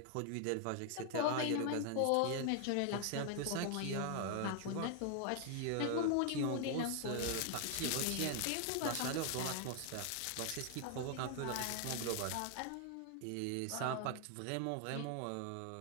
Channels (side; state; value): both; different; correlation 0.00